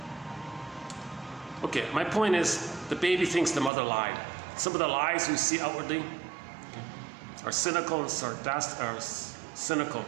Okay, my point is the baby thinks the mother lied. Some of the lies we see outwardly are cynical and sarcastic, are cynical.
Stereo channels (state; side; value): drops out; left; at 3.7 s